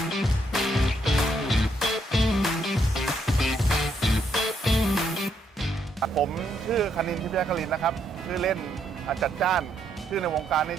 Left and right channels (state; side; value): normal; both; correlation 0.75